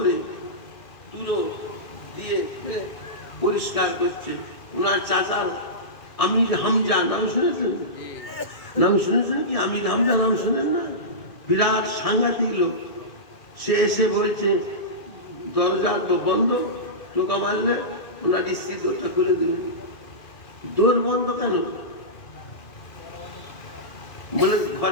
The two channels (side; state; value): right; late; 2.2 ms